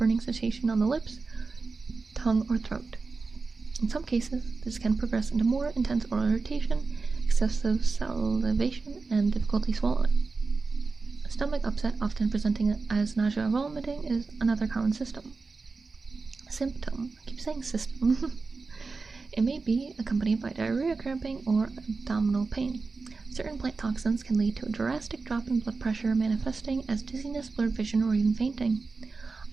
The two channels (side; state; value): left; quieter; 4.2 dB